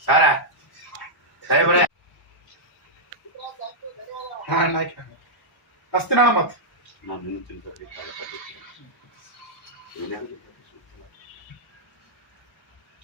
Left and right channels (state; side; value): normal; both; correlation -0.09